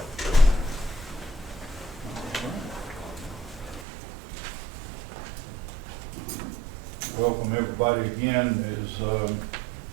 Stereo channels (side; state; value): left; drops out; at 3.9 s